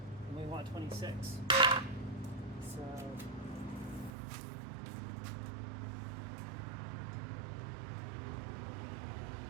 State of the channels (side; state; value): left; drops out; at 4.1 s